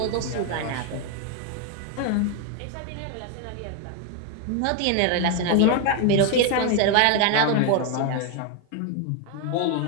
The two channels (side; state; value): both; different; correlation 0.01